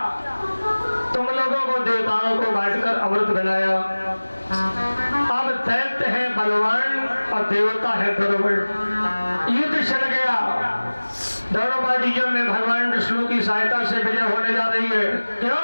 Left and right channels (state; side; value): inverted; both; correlation -1.00